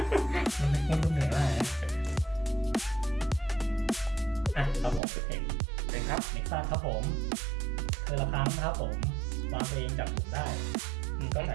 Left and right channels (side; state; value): left; drops out; at 5.0 s